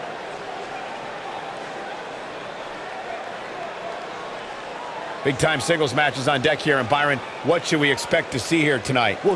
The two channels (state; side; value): identical; both; correlation 1.00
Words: Big-time singles matches on deck here, and Byron, what should we expect to see here tonight?